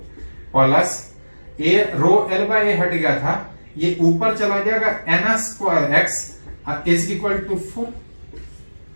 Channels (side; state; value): both; inverted; correlation -1.00